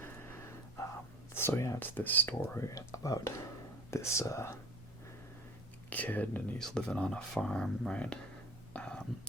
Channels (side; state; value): both; normal; correlation 0.40